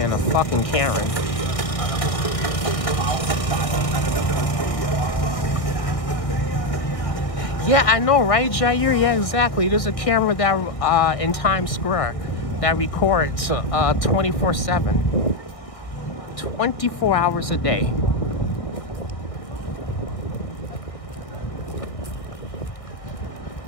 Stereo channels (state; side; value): late; right; 1.6 ms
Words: a fucking Karen. Yeah, I know, right, Jair? Yeah, exactly. There's a camera that in Times Square that records 24/7, 24 hours a day.